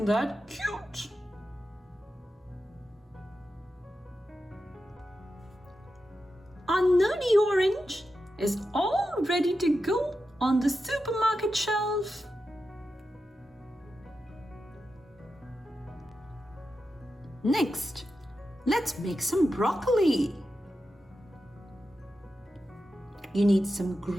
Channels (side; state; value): both; normal; correlation 0.90